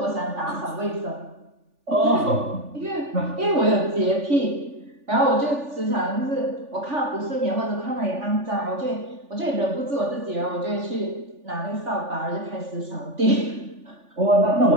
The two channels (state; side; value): late; left; 3.4 ms